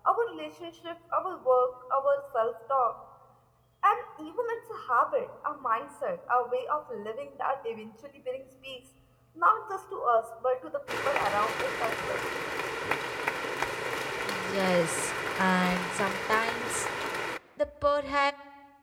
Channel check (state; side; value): identical; both; correlation 1.00